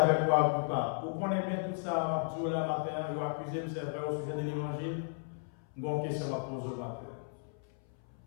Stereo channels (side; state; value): right; silent; 55 dB below the other